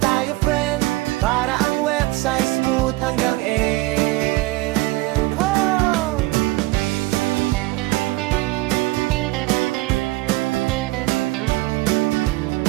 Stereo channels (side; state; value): left; quieter; 20.6 dB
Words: friend, para ang website smooth hanggang end. Oh!